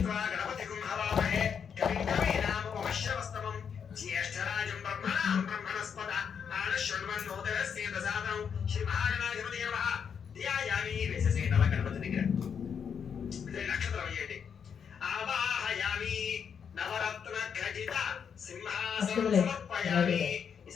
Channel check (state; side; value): quieter; right; 7.2 dB